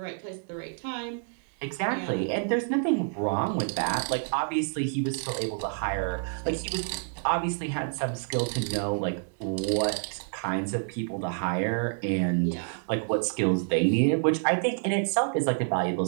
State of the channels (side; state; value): left; silent; 59 dB below the other